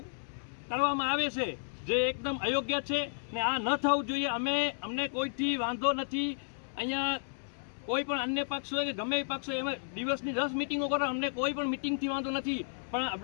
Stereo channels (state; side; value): silent; right; digital silence